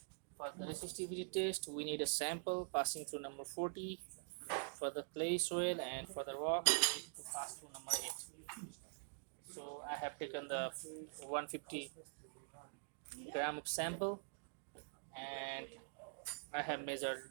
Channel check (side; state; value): left; silent; digital silence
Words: For the resistivity test we need a sample passing through number 40 for the clay soil, and for the rock we need to pass through number 8. So I have taken the 150 gram of sample and I have measured